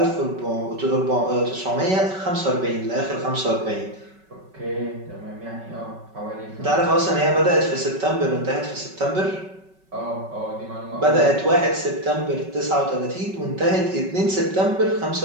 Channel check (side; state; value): left; late; 5.3 ms